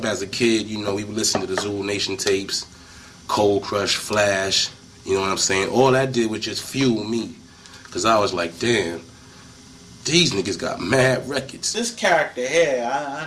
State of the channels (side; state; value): both; identical; correlation 1.00